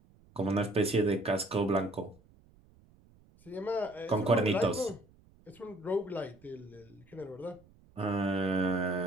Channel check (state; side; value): noise; right; rumble, 28 dB below the sound